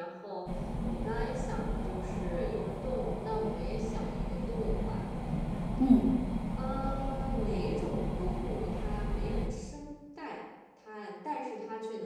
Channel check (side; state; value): both; identical; correlation 1.00